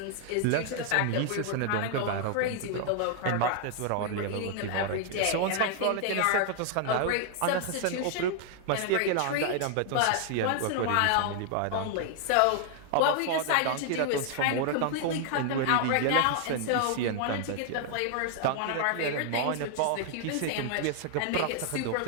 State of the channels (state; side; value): different; both; correlation 0.00